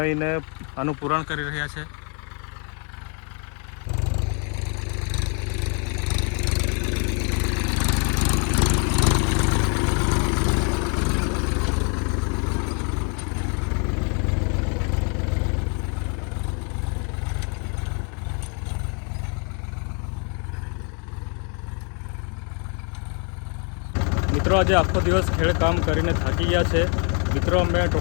આનું પુરાણ કરી રહ્યા છે। મિત્રો આજે આખો દિવસ ખેડકામ કરીને થાકી ગયા છે। મિત્રો અમે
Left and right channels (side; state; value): right; quieter; 39.2 dB